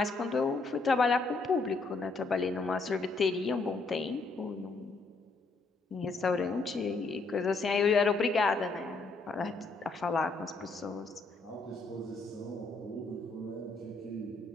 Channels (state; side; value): quieter; right; 3.7 dB